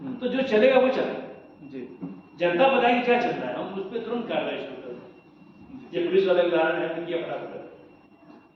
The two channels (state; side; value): identical; both; correlation 1.00